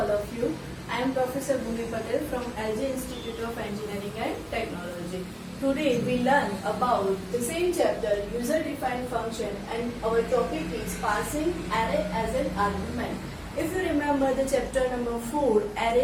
of you. I am Professor Bhumi Patel from LG Institute of Engineering and Technology. Today we learn about the same chapter, user-defined function, and our topic is passing array as an argument. If you remember the chapter number 4,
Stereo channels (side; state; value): both; identical; correlation 1.00